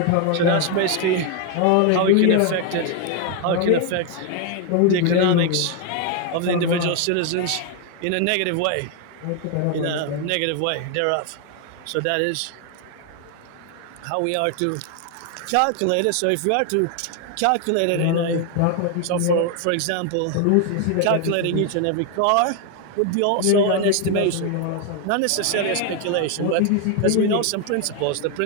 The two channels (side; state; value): both; different; correlation 0.01